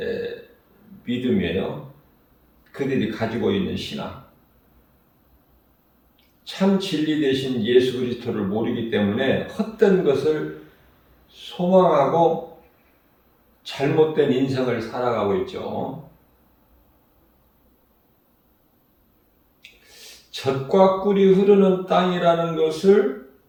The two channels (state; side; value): identical; both; correlation 1.00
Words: 믿음이에요. 그들이 가지고 있는 신앙. 참 진리 되신 예수 그리스도를 모르기 때문에 헛된 것을 소망하고 잘못된 인생을 살아가고 있죠. 젖과 꿀이 흐르는 땅이라는 것을,